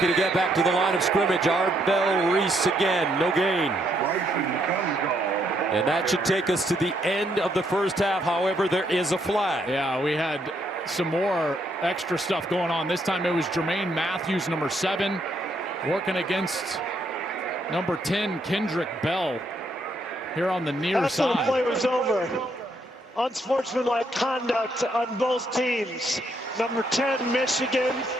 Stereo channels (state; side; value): normal; both; correlation 0.74